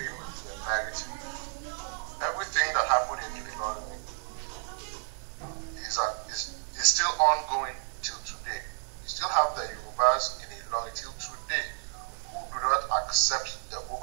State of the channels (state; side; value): silent; left; digital silence